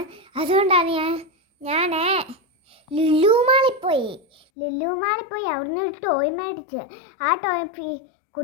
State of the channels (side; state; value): right; drops out; at 4.4 s